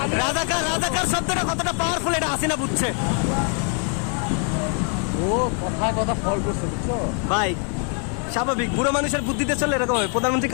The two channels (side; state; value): right; quieter; 38.4 dB